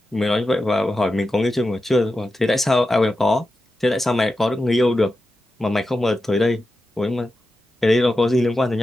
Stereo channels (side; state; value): both; normal; correlation 0.91